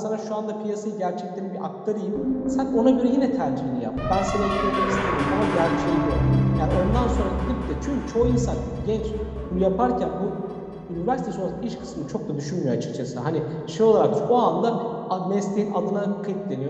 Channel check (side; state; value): both; identical; correlation 1.00